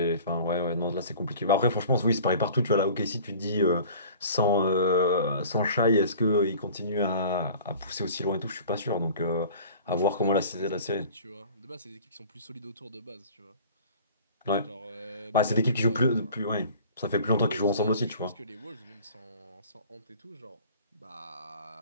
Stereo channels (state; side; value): inverted; both; correlation -0.45